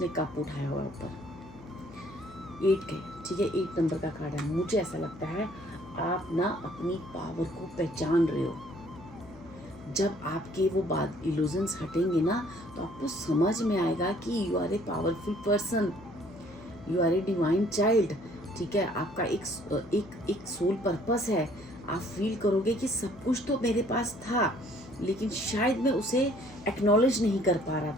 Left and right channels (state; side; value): noise; left; hum, 20 dB below the sound